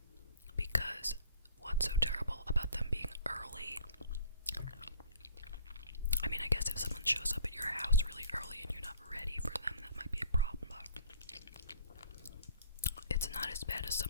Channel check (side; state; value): both; inverted; correlation -0.51